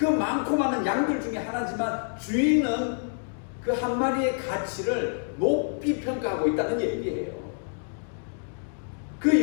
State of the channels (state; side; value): silent; right; digital silence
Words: 많고 많은 양들 중에 하나지만 주인은 그 한 마리의 가치를 높이 평가하고 있다는 얘기예요. 그